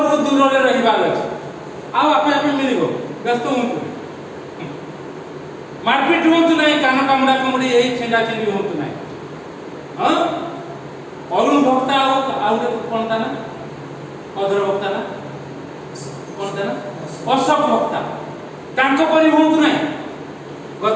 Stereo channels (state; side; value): identical; both; correlation 1.00